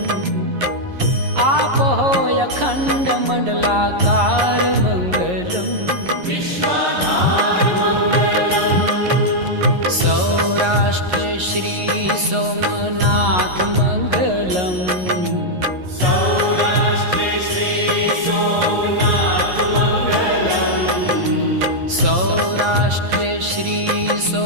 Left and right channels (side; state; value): left; late; 11 ms